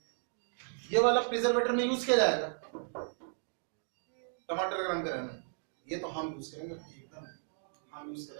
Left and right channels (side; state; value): left; silent; 55 dB below the other